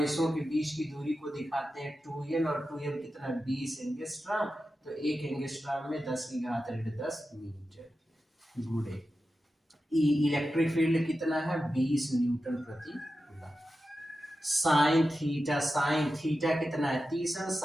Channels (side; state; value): both; normal; correlation 0.92